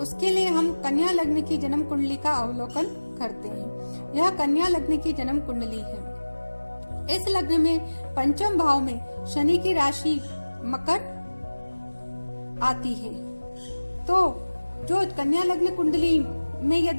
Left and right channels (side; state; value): both; inverted; correlation -1.00